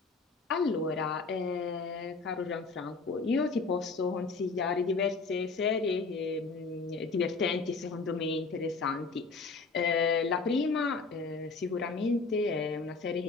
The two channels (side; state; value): right; quieter; 4.3 dB